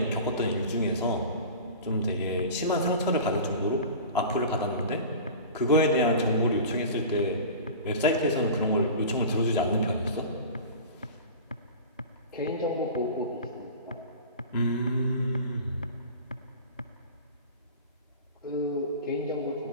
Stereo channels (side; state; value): both; inverted; correlation -0.35